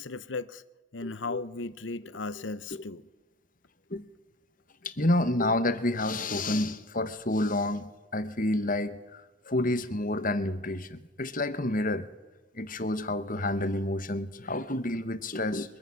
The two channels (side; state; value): both; normal; correlation 0.43